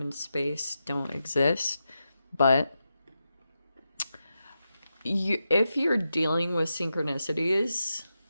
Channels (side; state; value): both; inverted; correlation -0.88